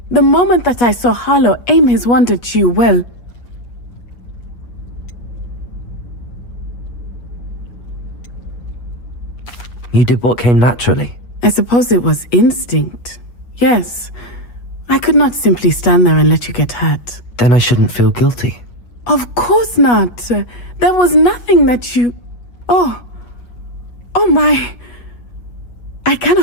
The moment that I saw Harlow aim his wand at you, well... You did what came naturally. I suppose it was instinct. Yes. I could not simply stand there and let you get hurt. Then I shouldn't feel guilty. Of course not. There was nothing that you... Oh my... I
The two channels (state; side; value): late; right; 8.3 ms